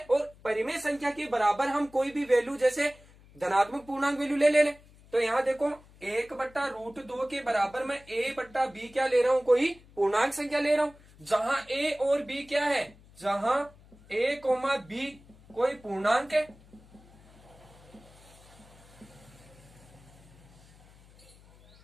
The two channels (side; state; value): left; noise; hum, 25 dB below the sound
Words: और परिमेय संख्या के बराबर हम कोई भी वैल्यू जैसे धनात्मक पूर्णांक वैल्यू ले ले। तो यहाँ देखो 1/√2 के बराबर मैं a/b क्या ले रहा हूं, कोई पूर्णांक संख्या ले रहा हूं, जहां a और b क्या है, जहां a, b कोई पूर्णांक है।